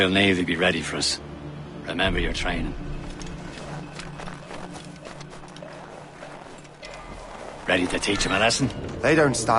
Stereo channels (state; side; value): identical; both; correlation 1.00